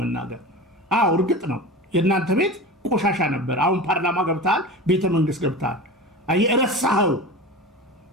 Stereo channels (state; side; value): normal; both; correlation 0.31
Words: መናገር። አዎ እርግጥ ነው የእናንተ ቤት ቆሻሻ ነበር። አሁን ፓርላማ ገብተሃል፣ ቤተ መንግስት ገብተሃል። እረሳኸው